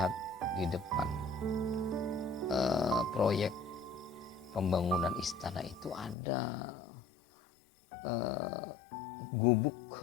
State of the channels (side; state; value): right; drops out; at 6.2 s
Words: di depan proyek pembangunan istana itu ada gubuk